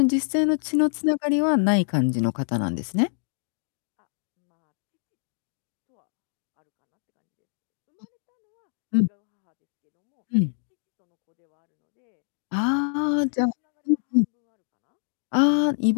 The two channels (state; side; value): silent; right; digital silence